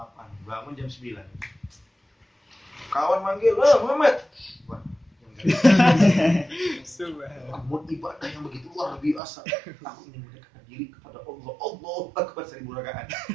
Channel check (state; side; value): drops out; left; at 9.2 s